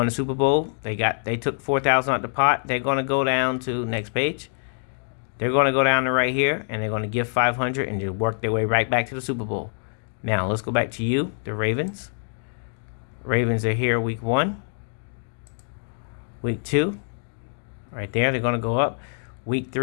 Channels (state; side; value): silent; right; digital silence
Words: the Super Bowl. They took 4,000 out the pot. They're going to go down to next page. They're going to go down to right here, and they're going to give 500 and just work their way right back to the Super Bowl. Now let's go back to you, the Ravens. Ravens are here week 1, week 2, right there. They're going to go up. Week